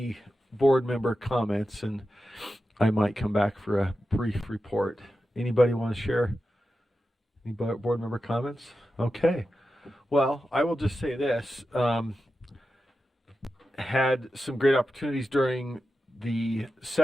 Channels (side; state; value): both; normal; correlation 0.91